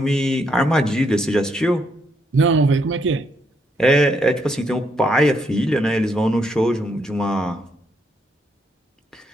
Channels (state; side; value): normal; both; correlation 0.75